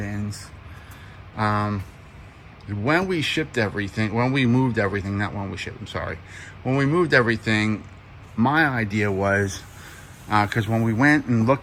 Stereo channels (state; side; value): identical; both; correlation 1.00